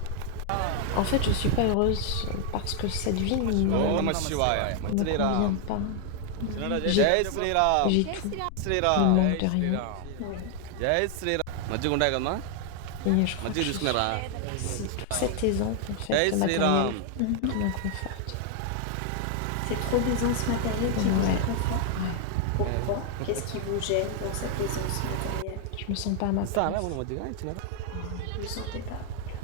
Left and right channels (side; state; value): both; different; correlation 0.00